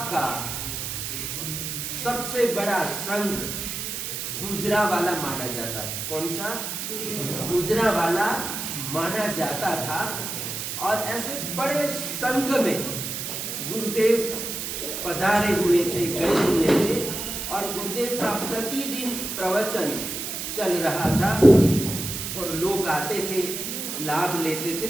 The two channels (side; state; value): right; noise; hiss, 5 dB below the sound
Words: का सबसे बड़ा संघ गुजरावाला माना जाता था। कौन सा? गुजरावाला माना जाता था। और ऐसे बड़े संघ में गुरुदेव पधारे हुए थे, गए हुए थे और गुरुदेव का प्रतिदिन प्रवचन चल रहा था और लोग आते थे, लाभ लेते थे।